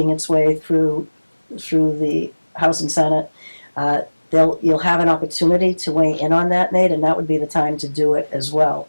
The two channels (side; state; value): both; inverted; correlation -1.00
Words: its way through the House and Senate. You'll have an opportunity to weigh in on that, Nate, and that would be the time to do it as well.